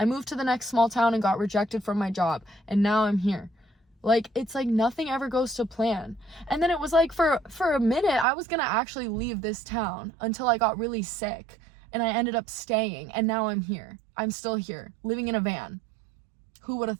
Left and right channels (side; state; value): left; drops out; at 8.2 s